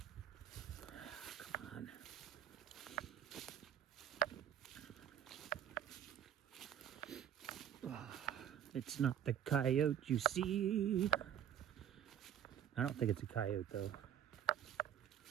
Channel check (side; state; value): left; quieter; 10.0 dB